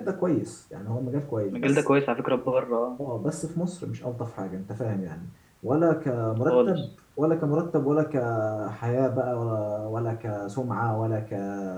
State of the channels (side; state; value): both; identical; correlation 1.00